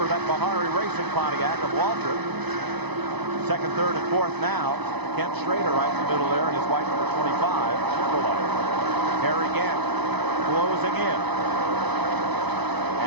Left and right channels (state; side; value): late; left; 0.99 ms